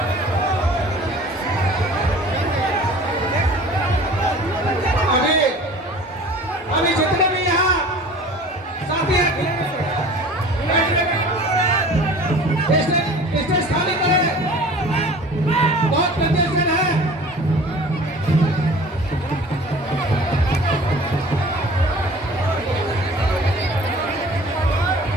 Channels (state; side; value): normal; both; correlation 0.44